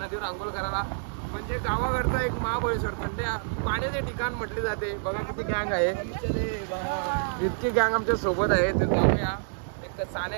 आंघोळ करायला. म्हणजे गावाकडचं एक महाबळेश्वर थंड पाण्याचे ठिकाण म्हटले जाते. बघा किती गँग आहे, इतकी गँग आमच्या सोबत आहे. तर जाऊया. एक साने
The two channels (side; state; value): left; silent; digital silence